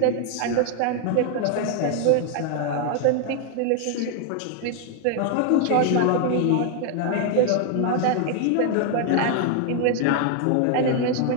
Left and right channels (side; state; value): both; different; correlation 0.00